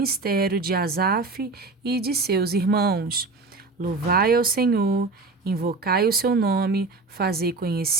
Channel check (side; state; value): left; quieter; 3.6 dB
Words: de Asaf e de seus irmãos. Louvai ao Senhor, invocai o seu nome, fazei